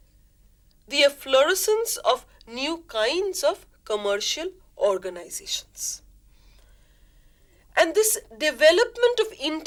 the efflorescence of new kinds of commercial organizations. And this development of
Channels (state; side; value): identical; both; correlation 1.00